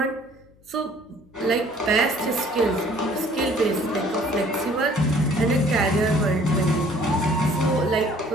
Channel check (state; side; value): noise; left; hum, 29 dB below the sound